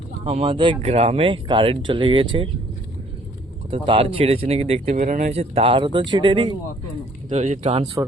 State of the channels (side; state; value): both; normal; correlation 0.60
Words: আমাদের গ্রামে কারেন্ট চলে গিয়েছে, কত তার ছিঁড়েছে নাকি দেখতে বেরোনো হয়েছে, তারও তো ছিঁড়েনি। তো ওই যে